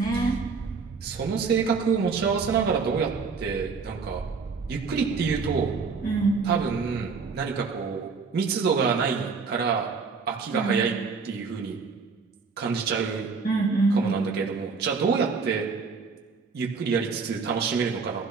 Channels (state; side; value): quieter; left; 5.0 dB